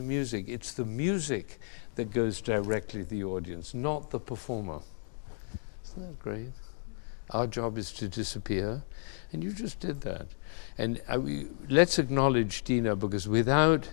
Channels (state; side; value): silent; right; digital silence